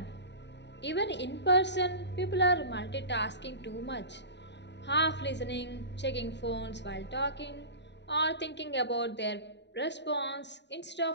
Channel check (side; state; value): right; late; 0.51 ms